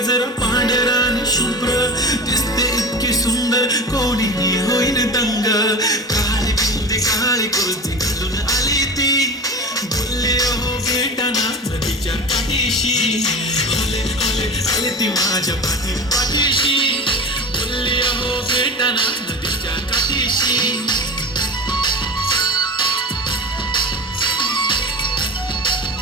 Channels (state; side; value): normal; both; correlation 0.31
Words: पांढरान शुभ्र दिसते इतकी सुंदर कोणीही होईन दंग काळी बिंदी काळी कुर्ती घालून आली ती बोलले हो भेटाना नदीच्या काठीशी आले आले आले ती माझ्या पाठीशी बोलले हो भेटाना नदीच्या काठीशी